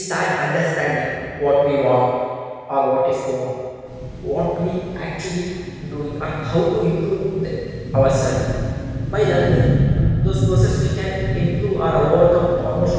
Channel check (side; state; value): both; identical; correlation 1.00